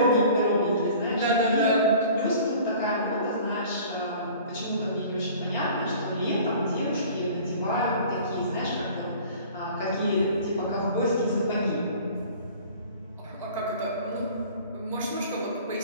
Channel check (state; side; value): inverted; both; correlation -0.46